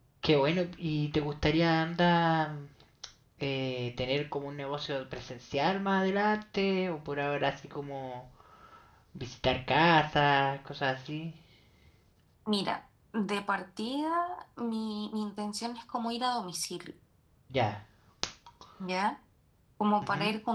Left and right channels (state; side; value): identical; both; correlation 1.00